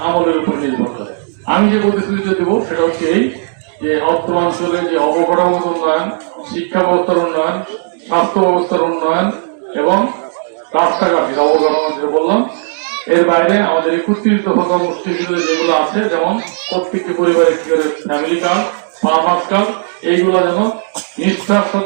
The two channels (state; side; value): silent; left; digital silence